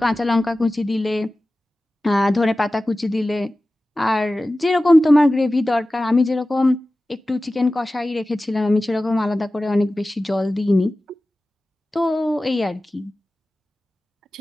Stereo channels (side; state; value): both; normal; correlation 0.96